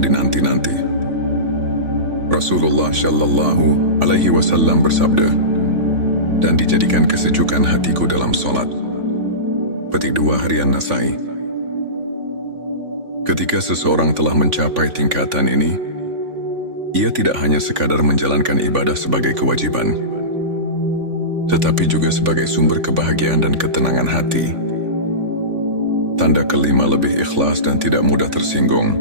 dinanti-nanti. Rasulullah Shallallahu Alaihi Wasallam bersabda, "Dan dijadikan kesejukan hatiku dalam solat." Petik 2 harian Nasai. Ketika seseorang telah mencapai tingkatan ini, ia tidak hanya sekadar menjalankan ibadah sebagai kewajiban, tetapi juga sebagai sumber kebahagiaan dan ketenangan hati. Tanda kelima, lebih ikhlas dan tidak mudah tersinggung.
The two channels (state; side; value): late; left; 3.5 ms